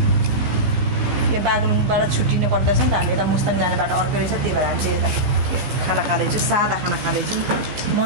यो बागलुङबाट छुट्टिनु पर्दैछ नि त हामी यता मुस्ताङ जाने बाटो अर्कै रहेछ त्यही भएर हामी चाहिँ यता खाना खाँदैछु सादा खाना खाँदैछु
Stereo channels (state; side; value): late; left; 15 ms